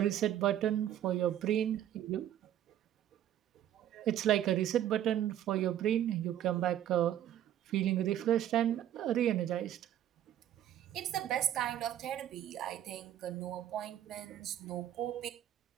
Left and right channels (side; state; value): left; quieter; 11.4 dB